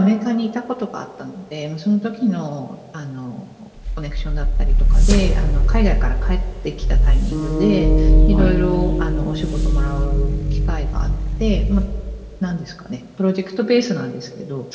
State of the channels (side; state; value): both; identical; correlation 1.00